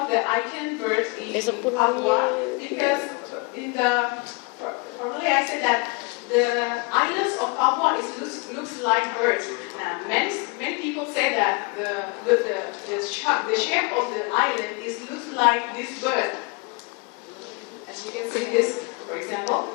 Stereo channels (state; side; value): quieter; right; 29.8 dB